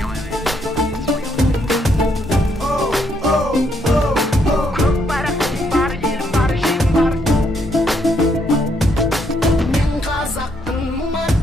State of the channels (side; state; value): both; normal; correlation 0.74